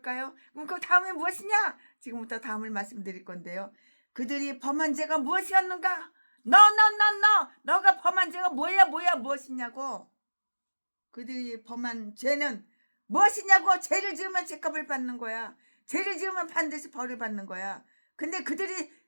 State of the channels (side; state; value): both; inverted; correlation -1.00